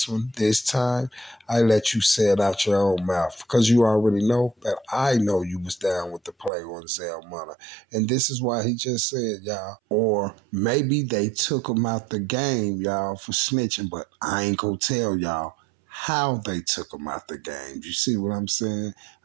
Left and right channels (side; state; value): left; drops out; at 6.5 s